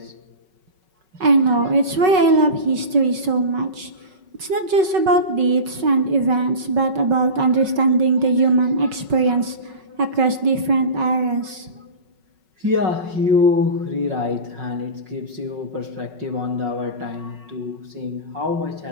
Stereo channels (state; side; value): late; left; 5.3 ms